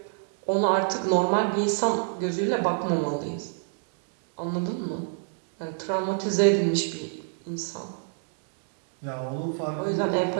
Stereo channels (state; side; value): silent; left; digital silence